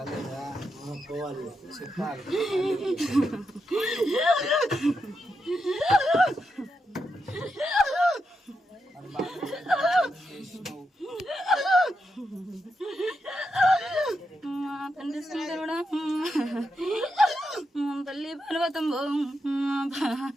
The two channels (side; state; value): both; normal; correlation 0.85